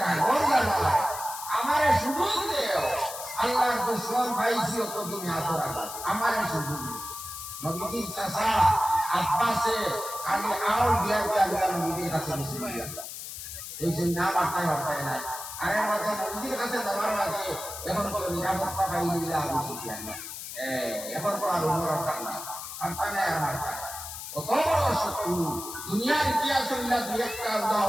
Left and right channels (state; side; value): noise; left; hiss, 9 dB below the sound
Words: লাগা আমারে সুযোগ দেও আল্লাহর দুশমন ভাইসি তো তুমি আতরা আমারে সুযোগ নবীর চাচা আব্বাসে খালি আউল দিয়া দিয়া নবীর কাছে বসে দিয়া এই যে না বাতায় হতায় নাই আর এর মাঝে নদীর কাছে যাওয়ার মাঝে এখন কোনো নিরাপত্তা পাইলে আবু সুফিয়ান এখন তো আর অন্যরকম না আর পানে আর মারতা কত বড় শত্রু দুনিয়ার ইতিহাস হইলা দুই একটা